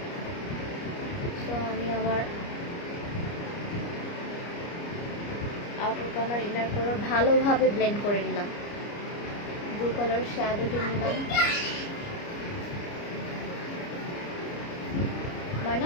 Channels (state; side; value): late; right; 29 ms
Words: সো আমি আমার আউটার কর্নার ইনার কর্নার ভালোভাবে ব্লেন্ড করে নিলাম। ব্লু কালার শ্যাডোটি নিলাম।